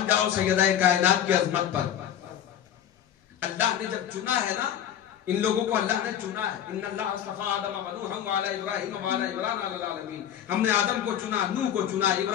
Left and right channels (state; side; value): quieter; right; 10.1 dB